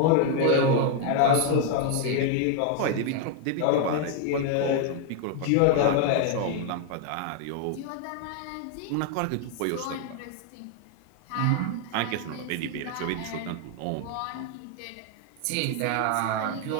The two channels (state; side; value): different; both; correlation 0.00